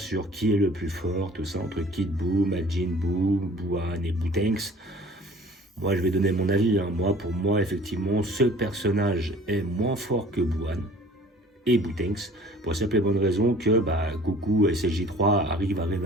sur qui est le plus fort, tout ça, entre Kid Buu, Majin Buu, Buan et Boutenks. Moi je vais donner mon avis, hein. Pour moi effectivement ce personnage est moins fort que Buan et Boutenks, pour la simple et bonne raison que Goku et SLJ3 arrivent à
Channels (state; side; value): normal; both; correlation 0.49